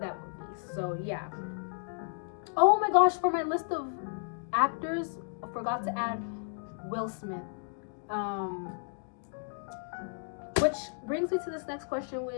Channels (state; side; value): silent; right; digital silence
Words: that movie. So yeah. Oh my gosh, for my list of actors, I forgot to add Will Smith. Which brings me to this next question,